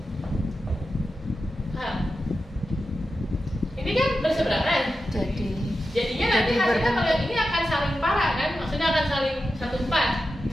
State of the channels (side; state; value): both; normal; correlation 0.91